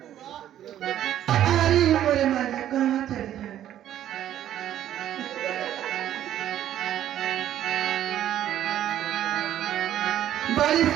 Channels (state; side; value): quieter; left; 11.6 dB